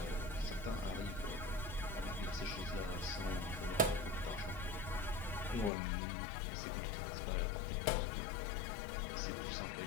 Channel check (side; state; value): right; drops out; at 5.7 s